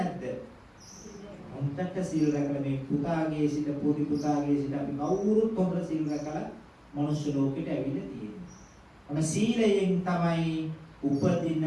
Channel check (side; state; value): both; identical; correlation 1.00